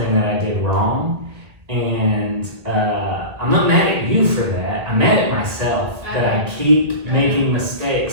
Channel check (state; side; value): late; left; 1.8 ms